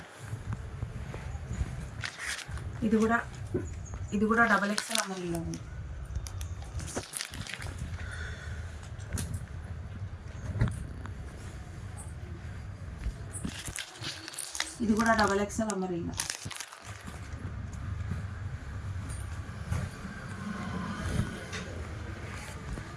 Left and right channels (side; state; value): both; identical; correlation 1.00